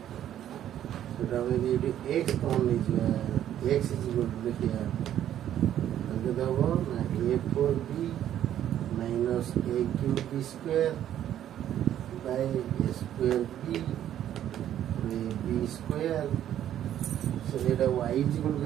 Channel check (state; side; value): quieter; left; 11.1 dB